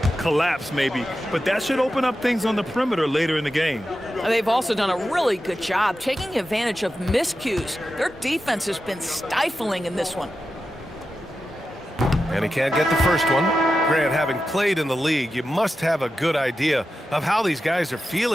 collapse maybe, but that should open up things on the perimeter later in the game. They've also done a really good job taking advantage of miscues. Their defense has been stifling in this one. And he can't get the first one. Grant, having played in the league, you must have a good idea of how these guys are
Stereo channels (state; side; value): normal; both; correlation 0.91